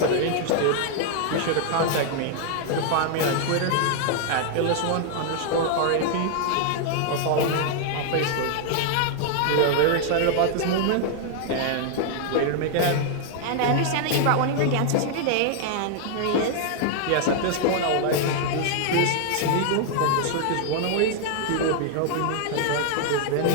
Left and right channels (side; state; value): both; different; correlation 0.00